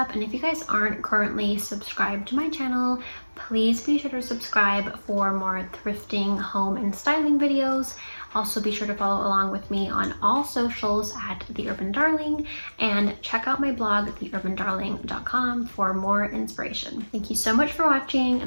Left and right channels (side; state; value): both; inverted; correlation -1.00